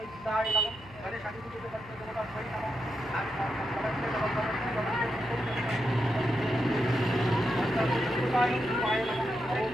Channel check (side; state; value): left; noise; hum, 21 dB below the sound